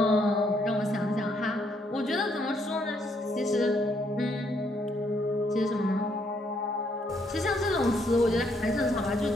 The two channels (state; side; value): normal; both; correlation 0.72